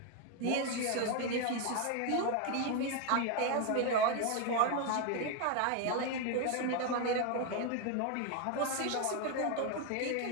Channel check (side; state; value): both; different; correlation 0.01